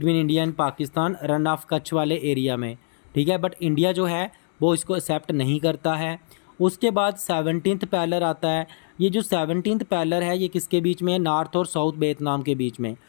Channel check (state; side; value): silent; right; digital silence